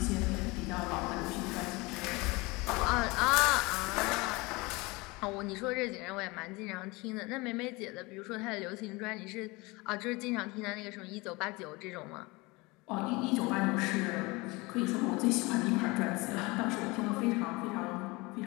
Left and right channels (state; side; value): quieter; right; 24.3 dB